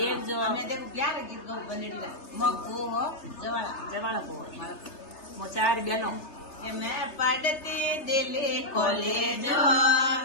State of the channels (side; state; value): right; late; 3.3 ms